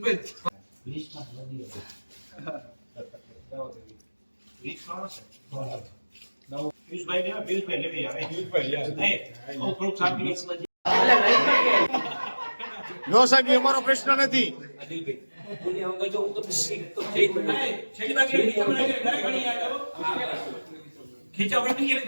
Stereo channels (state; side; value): inverted; both; correlation -1.00